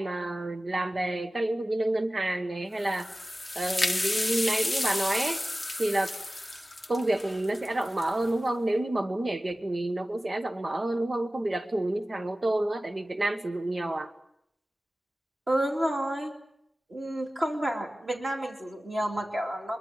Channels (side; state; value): both; normal; correlation 0.96